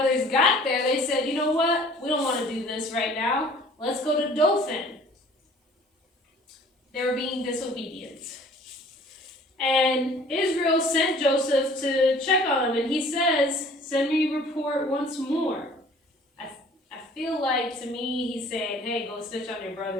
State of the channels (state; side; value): normal; both; correlation 0.51